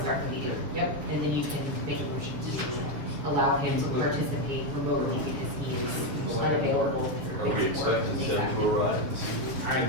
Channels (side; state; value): left; late; 7.1 ms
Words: start the meeting, yep, and then you can make a motion to allow him to participate remotely because he is unavailable. Are we expecting Seth to arrive? I